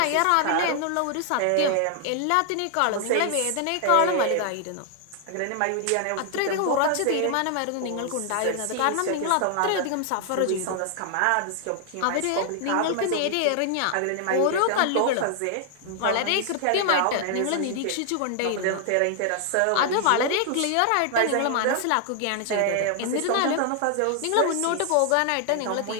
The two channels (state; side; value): different; both; correlation 0.00